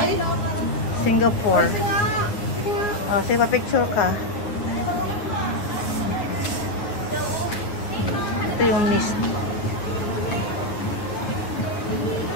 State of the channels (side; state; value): right; late; 9.9 ms